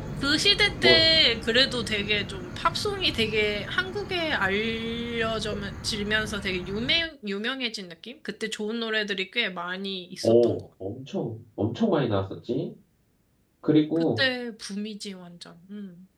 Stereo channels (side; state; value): both; identical; correlation 1.00